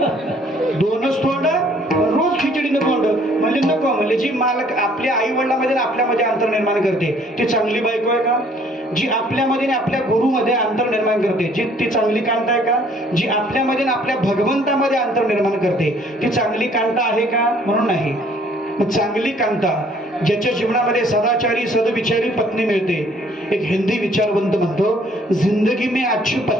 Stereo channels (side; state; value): both; normal; correlation 0.60